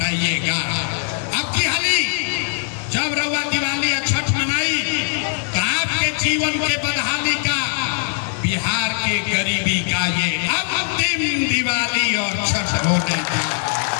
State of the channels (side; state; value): right; silent; digital silence